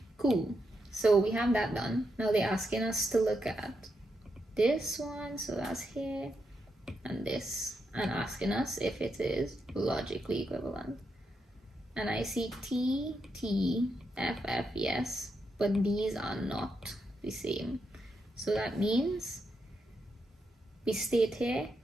Cool. So we have that done. Now they're asking us to look at this one. So that's here. And this. And asking us if it is logically equivalent. And I see T, T, F, F, yes. But these are not the same. So that means we state here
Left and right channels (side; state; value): both; normal; correlation 0.83